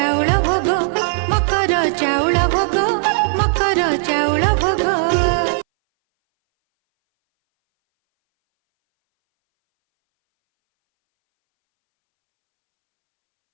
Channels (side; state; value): left; silent; 63 dB below the other